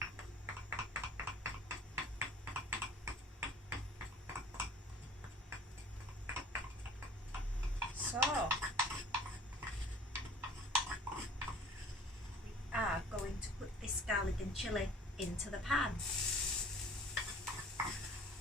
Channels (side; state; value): both; normal; correlation 0.48